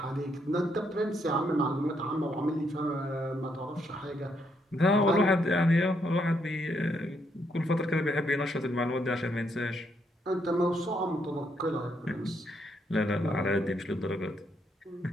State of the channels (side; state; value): both; normal; correlation 0.75